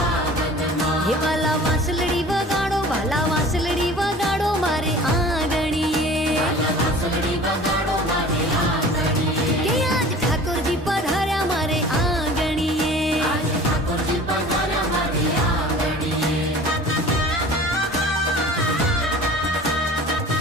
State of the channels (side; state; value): both; normal; correlation 0.43